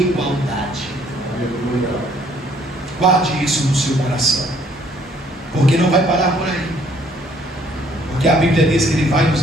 Aleluia. Guarde isso no seu coração, porque não vai parar por aí, porque a Bíblia diz que Ele vai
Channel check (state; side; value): normal; both; correlation 0.63